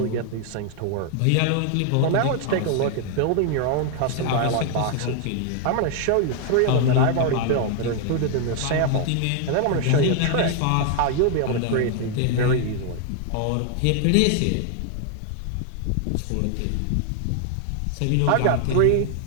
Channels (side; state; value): both; different; correlation 0.00